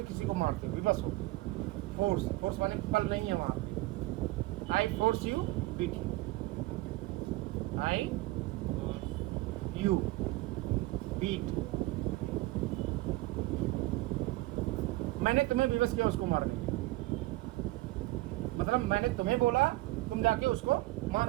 किसी को मारते हो, विवश हो। फोर्स, फोर्स माने बल नहीं है वहाँ पे। I force you beat you, I you beat, मैंने तुम्हें विवश किया उसको मारने, मतलब मैंने तुम्हें बोला, तुम जाके उसको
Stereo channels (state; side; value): quieter; left; 19.3 dB